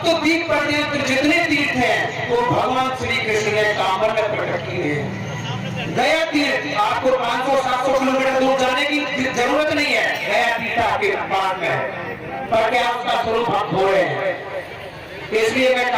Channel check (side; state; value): both; identical; correlation 1.00